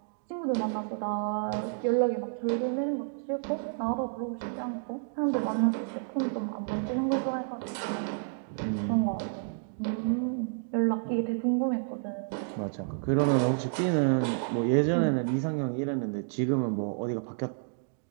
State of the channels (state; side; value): silent; left; digital silence